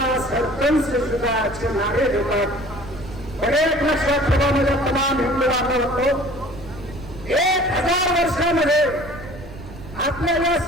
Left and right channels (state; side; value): noise; right; rumble, 15 dB below the sound